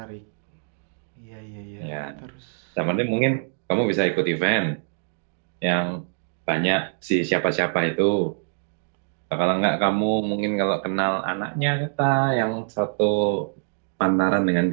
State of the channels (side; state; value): left; silent; digital silence